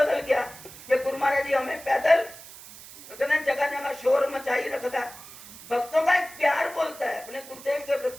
गया कि गुरु महाराज जी हमें पैदल तो कहते हैं जगह जगह शोर मचाई रखता, भक्तों का एक प्यार बोलता है अपने गुरुदेव के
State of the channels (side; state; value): right; noise; hiss, 17 dB below the sound